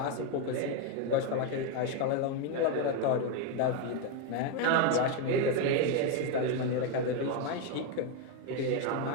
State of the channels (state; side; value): different; both; correlation 0.02